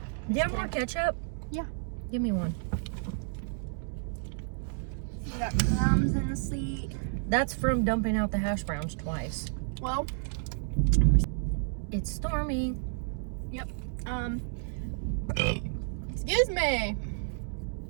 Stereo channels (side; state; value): left; silent; digital silence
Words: Do you have more ketchup? Yeah. Give me one. You got crumbs in the seat. That's from dumping out the hash browns twice. Well, It's Stormy. excuse me.